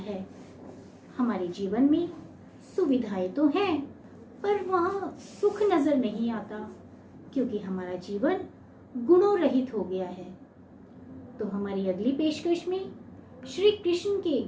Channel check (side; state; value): both; identical; correlation 1.00